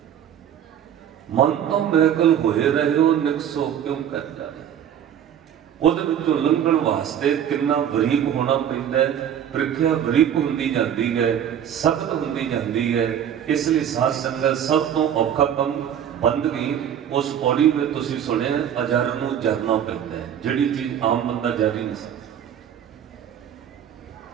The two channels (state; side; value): quieter; left; 9.5 dB